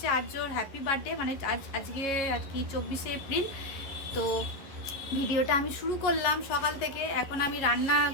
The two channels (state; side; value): late; right; 11 ms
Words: আর্যর হ্যাপি বার্থডে, মানে আজকে আর কি 24শে এপ্রিল। তো ভিডিওটা আমি শুরু করলাম সকাল থেকে। এখন আমি